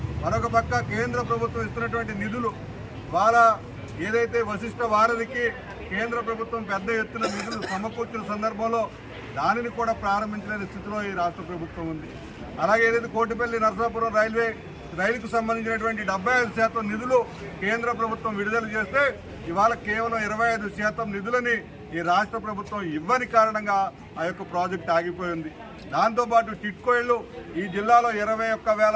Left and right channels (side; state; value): both; identical; correlation 1.00